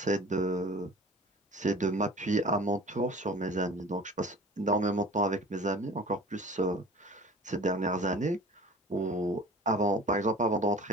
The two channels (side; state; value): both; normal; correlation 0.42